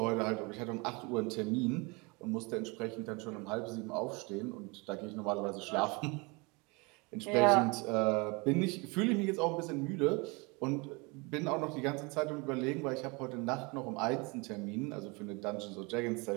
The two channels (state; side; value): quieter; left; 28.3 dB